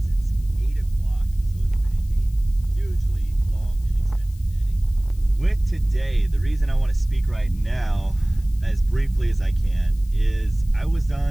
since 8 o'clock. So it's been a hugely long and extensive day. With today, the reason I want to speak right now is briefly as I can, is I was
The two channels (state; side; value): noise; left; hiss, 27 dB below the sound